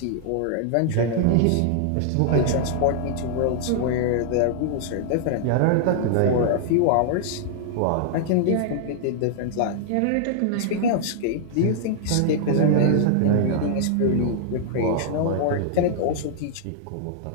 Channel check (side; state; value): both; different; correlation -0.01